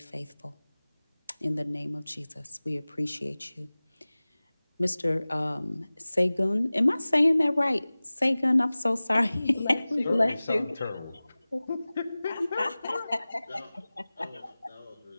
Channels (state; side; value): inverted; both; correlation -0.99